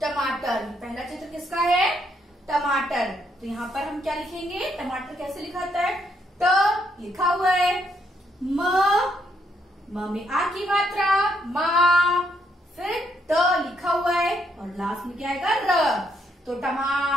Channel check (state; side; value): normal; both; correlation 0.74